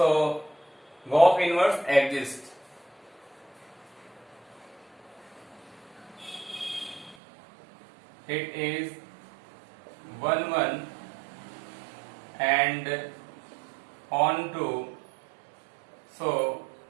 Goff inverse exists. It is 1 1 and on 2, so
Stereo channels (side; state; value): left; drops out; at 7.2 s